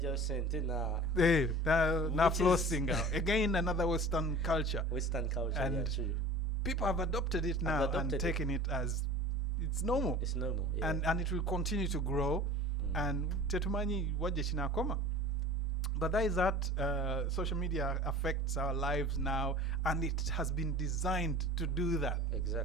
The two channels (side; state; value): both; normal; correlation 0.40